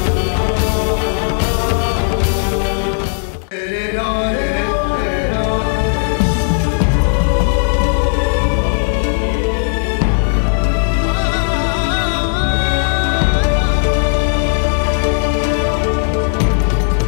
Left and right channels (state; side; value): silent; right; digital silence